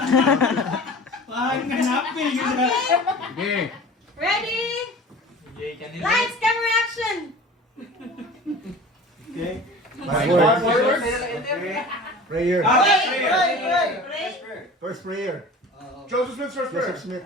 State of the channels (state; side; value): normal; both; correlation 0.40